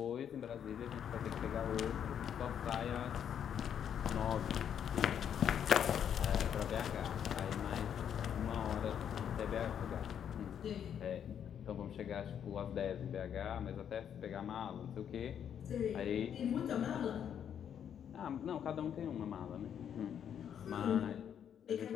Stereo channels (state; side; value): quieter; right; 8.8 dB